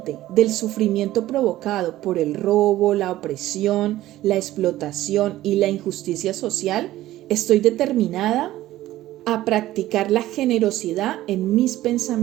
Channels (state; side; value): quieter; left; 15.1 dB